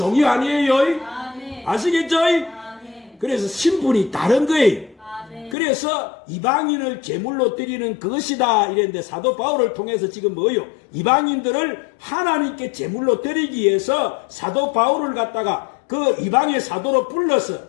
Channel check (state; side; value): drops out; right; at 5.6 s